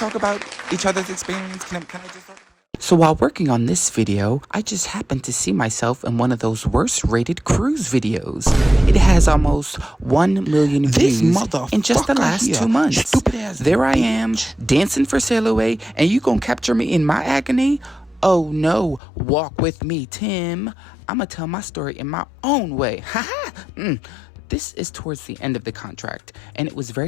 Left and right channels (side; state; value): right; drops out; at 19.0 s